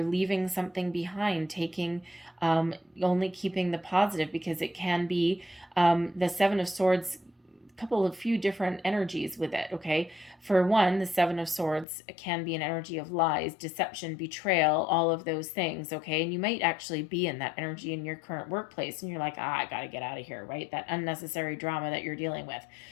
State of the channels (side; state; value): right; drops out; at 11.9 s